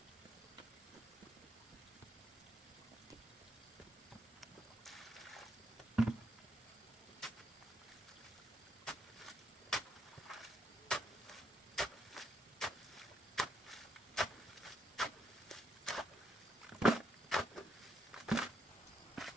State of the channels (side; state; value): both; normal; correlation 0.75